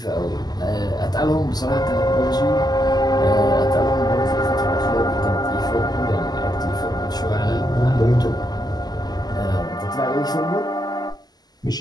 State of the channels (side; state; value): right; late; 0.20 ms